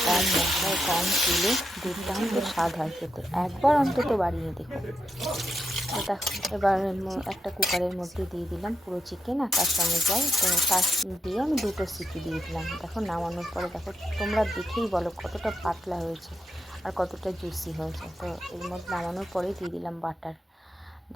কম মশলায় কম তেলে দুর্দান্ত স্বাদ হয় খেতে। একবার অন্তত বানিয়ে দেখো। তো দেখো, এবার একটা কুকারের মধ্যে দিয়ে দিলাম পুরো চিকেন আর তার সঙ্গে জল। তো তার দিয়ে আমি 2টো সিটি দিয়ে দিলাম। দেখো, নামানোর পরে দেখো, তোমরা দেখেই বলো কতটা পাতলা হয়েছে আর কতটা জুসি হয়েছে। তো এর মধ্যে নামানোর পরেই দিয়ে দিলাম বাটার।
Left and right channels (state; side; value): normal; both; correlation 0.84